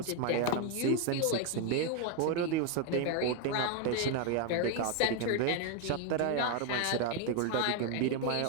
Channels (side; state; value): both; different; correlation 0.01